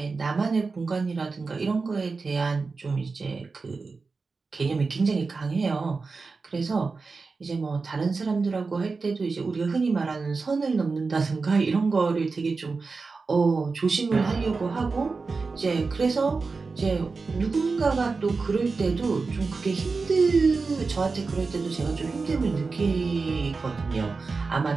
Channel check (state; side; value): quieter; left; 4.3 dB